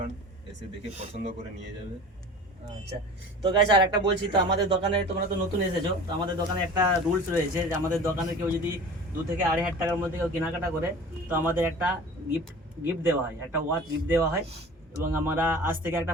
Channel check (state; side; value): normal; both; correlation 0.40